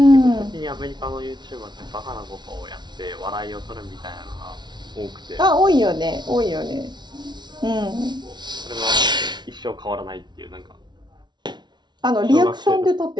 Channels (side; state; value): left; late; 0.21 ms